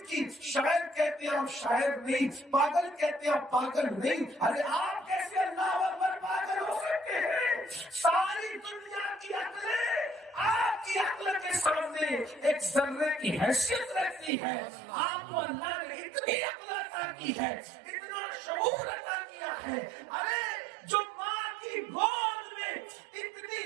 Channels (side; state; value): left; drops out; at 14.3 s